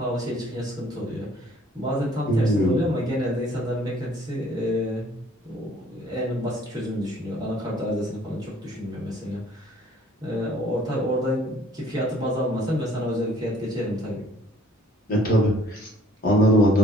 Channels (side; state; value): both; normal; correlation 0.57